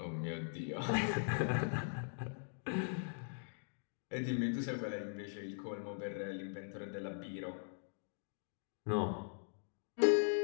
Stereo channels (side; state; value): right; silent; digital silence